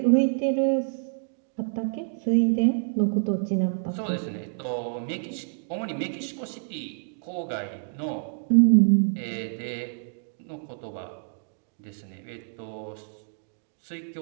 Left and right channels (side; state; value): left; silent; digital silence